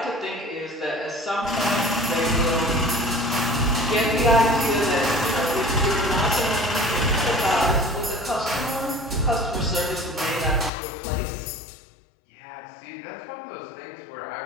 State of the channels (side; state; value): right; drops out; at 10.7 s